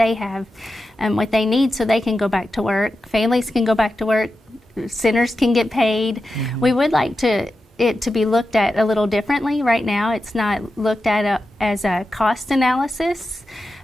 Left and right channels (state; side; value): normal; both; correlation 0.91